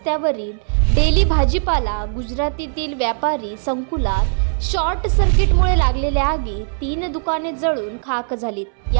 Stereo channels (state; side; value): silent; left; 67 dB below the other